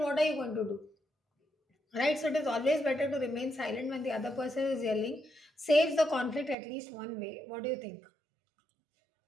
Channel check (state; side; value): drops out; left; at 6.6 s